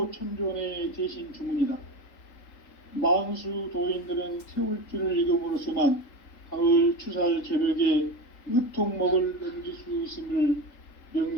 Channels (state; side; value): late; right; 3.8 ms